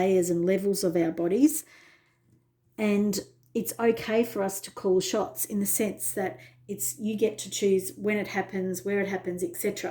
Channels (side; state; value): both; identical; correlation 1.00